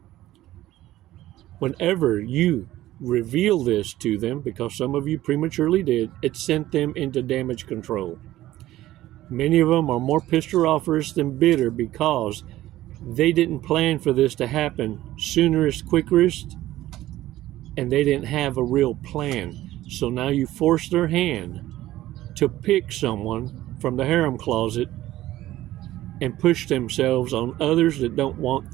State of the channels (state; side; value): quieter; left; 15.1 dB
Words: Whenever you reveal this to them, because some of you prematurely did, it sent them into damage control. Many of them are more pissed off than bitter because they didn't plan for this to happen soonerest, quickest, and they didn't have a real plan. So now you force their hand to pick someone from the harem closet and push themselves on others that don't want